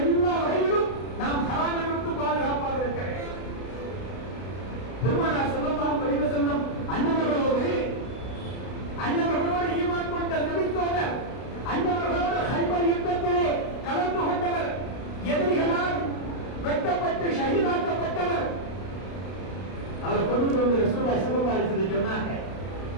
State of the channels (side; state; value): right; late; 32 ms